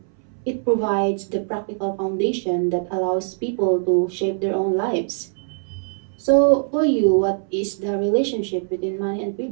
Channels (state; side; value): silent; left; 62 dB below the other